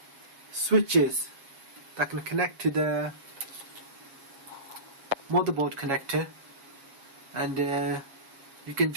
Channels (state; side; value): late; left; 7.4 ms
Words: switches that can connect to the motherboard connector, and you can